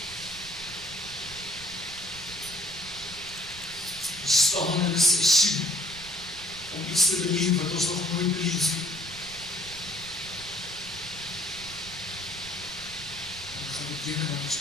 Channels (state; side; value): noise; right; rumble, 18 dB below the sound